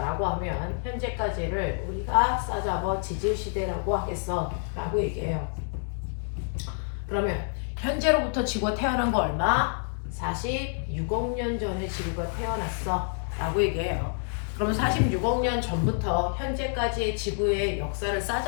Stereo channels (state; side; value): silent; right; 59 dB below the other